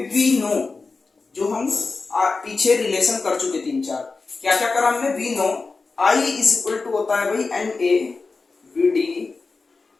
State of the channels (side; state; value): right; quieter; 4.1 dB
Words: वी नो, जो हम पीछे रिलेशन कर चुके 3-4, क्या क्या करा हमने, we know I is equal to होता है भाई NA VD